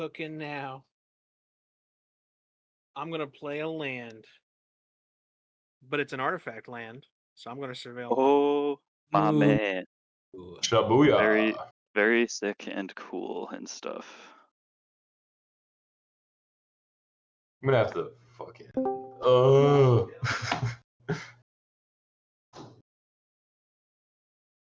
now. I'm gonna play a land, but it's an artifact land, so I'm gonna surveil. Oh, my man. Shabuya. Very, very sick and cool and stuff. I'm gonna have to fucking. Oh.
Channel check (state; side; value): identical; both; correlation 1.00